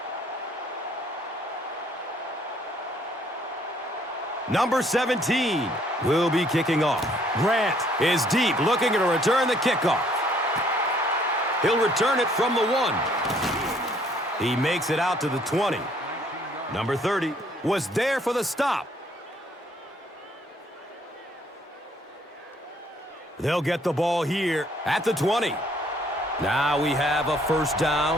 Number 17 will be kicking off. Grant is deep, looking to return the kickoff. He'll return it from the 1. He makes it out to the 20. Number 30 was there for the stop. They'll get the ball here at the 20. Now we have a first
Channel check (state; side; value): normal; both; correlation 0.64